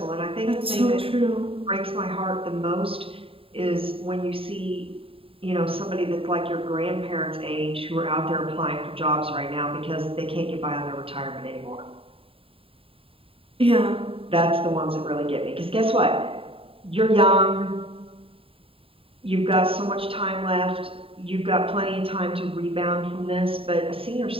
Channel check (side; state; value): left; late; 0.27 ms